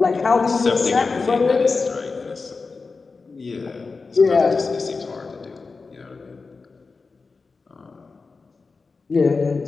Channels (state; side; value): quieter; right; 4.3 dB